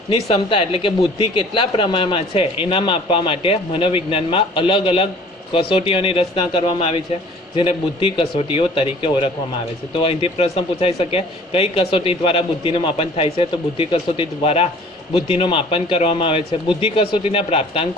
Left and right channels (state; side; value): normal; both; correlation 0.50